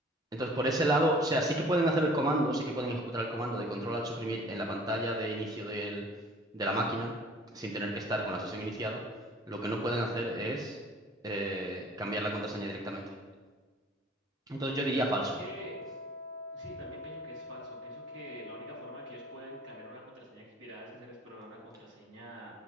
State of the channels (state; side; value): normal; both; correlation 0.51